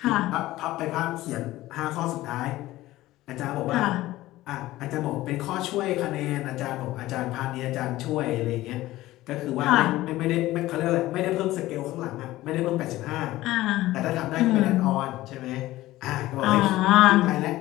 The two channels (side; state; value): right; quieter; 16.6 dB